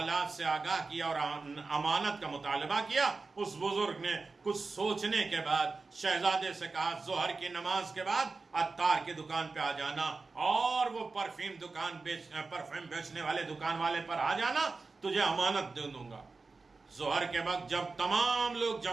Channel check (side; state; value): left; quieter; 4.0 dB